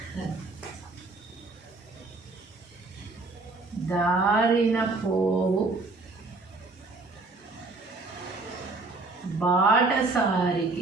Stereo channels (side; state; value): left; quieter; 3.5 dB